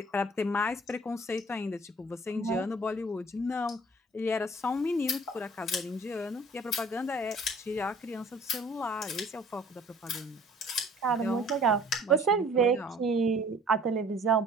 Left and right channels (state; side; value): normal; both; correlation 0.53